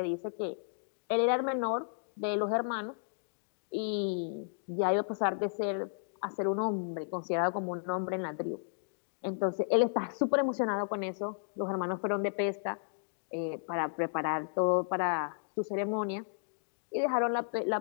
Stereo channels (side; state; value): right; silent; digital silence